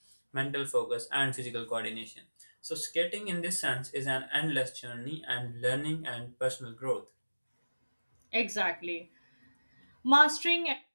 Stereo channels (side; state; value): both; inverted; correlation -1.00